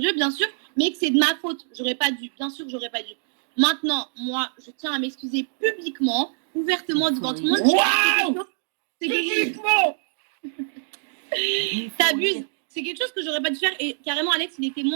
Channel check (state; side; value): silent; left; digital silence